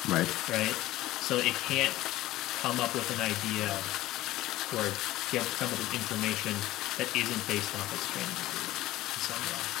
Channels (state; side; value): quieter; right; 16.2 dB